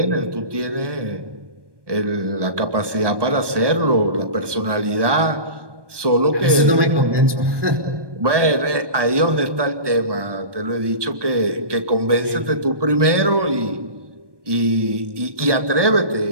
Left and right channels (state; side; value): late; left; 1.2 ms